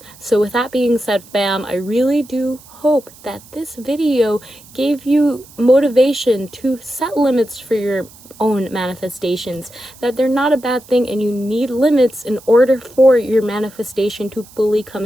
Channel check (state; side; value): noise; right; hiss, 23 dB below the sound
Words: So with that being said, fam, I really do hope that this video gave you motivation to set limits for your own manifestations, that they're not a bad thing, and you need limits in order for your manifestation to fully come